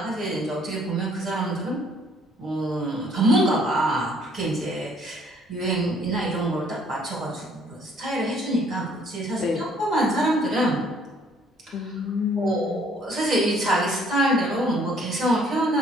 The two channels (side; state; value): both; normal; correlation 0.62